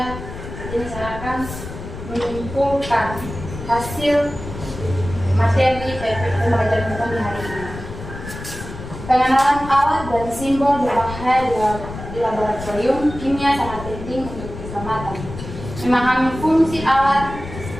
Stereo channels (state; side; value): noise; left; rumble, 10 dB below the sound